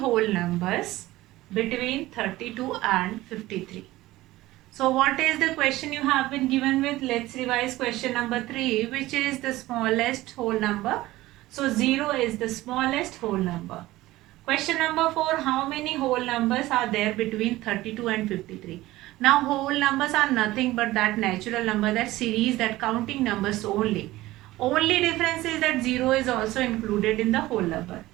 numbers between 32 and 53. So what is the question you have been given with? Let's revise question number 3, which is the smallest whole number. So 0 is the smallest whole number. Question number 4, how many whole numbers are there between 32 and 53? Now whole numbers are nothing but that natural number, that series, that counting numbers only. Only difference is that 0 is also included in the whole number.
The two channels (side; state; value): left; quieter; 17.4 dB